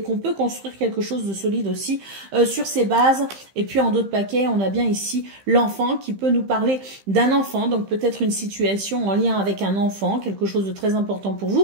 qu'on peut construire quelque chose de solide aussi sur ces bases. Et puis en d'autres paquets, on a bien ici l'enfant qui peut nous parler d'un enfant, donc peut-être une situation en lien avec un enfant, quelque chose de très important pour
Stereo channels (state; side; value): late; left; 15 ms